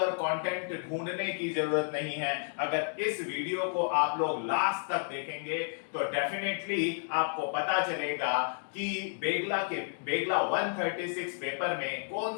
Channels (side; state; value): right; silent; digital silence